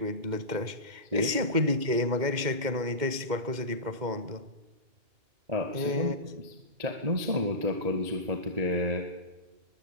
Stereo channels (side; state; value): left; late; 2.1 ms